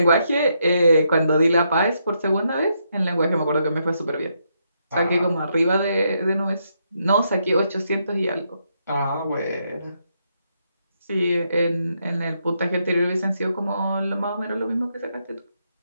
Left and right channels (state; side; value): inverted; both; correlation -0.78